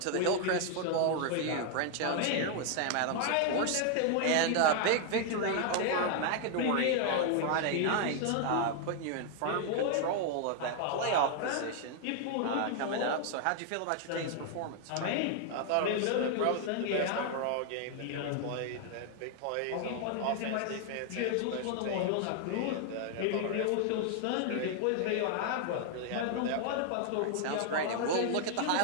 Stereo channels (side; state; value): both; different; correlation 0.00